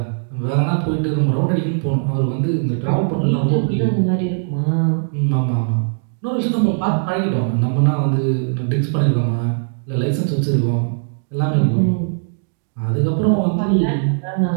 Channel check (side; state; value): left; silent; digital silence